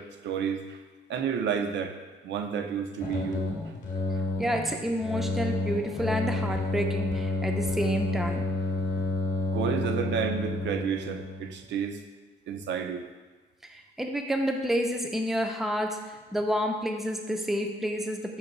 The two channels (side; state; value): both; normal; correlation 0.65